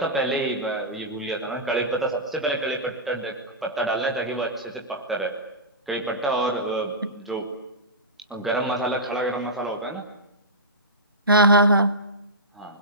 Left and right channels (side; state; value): both; normal; correlation -0.15